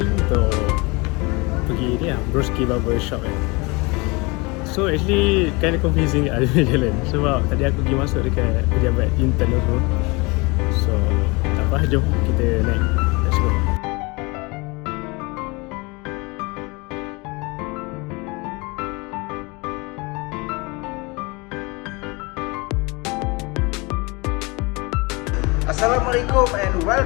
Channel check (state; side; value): quieter; right; 26.5 dB